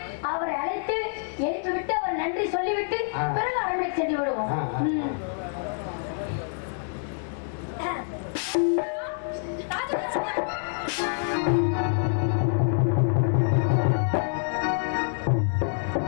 அவரை அழைத்து எழுப்பி விட்டு அவர் நன்றி சொல்லிவிட்டு பிறகு அரண்மனை சென்று விடுவோம்.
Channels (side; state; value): right; silent; digital silence